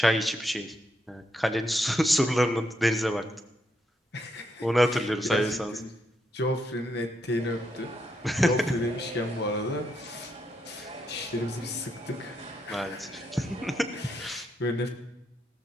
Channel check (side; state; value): both; normal; correlation 0.80